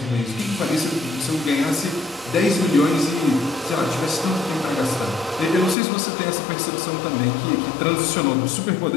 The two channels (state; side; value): drops out; right; at 5.8 s